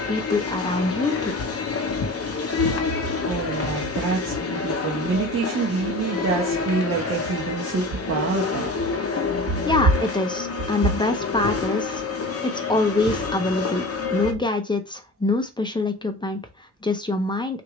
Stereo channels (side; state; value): both; normal; correlation 0.37